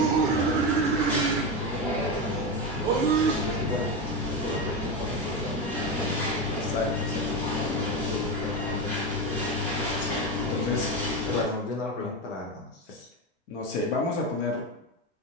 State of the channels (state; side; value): normal; both; correlation 0.16